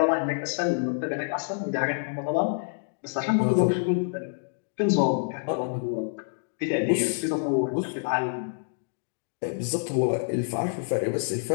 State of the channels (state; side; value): silent; right; digital silence